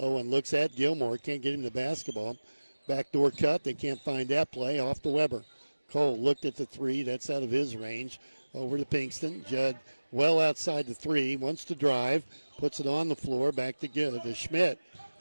looks at Gilmore. Can't get him the basketball. Backdoor cut. They can't find that play. Off to Weber. Cole looked at the three. That's out of his range. Over to Pinkston. Judd well outside the three. Wants to drive. Puts it on the floor. Back to Schmidt.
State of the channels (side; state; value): both; inverted; correlation -1.00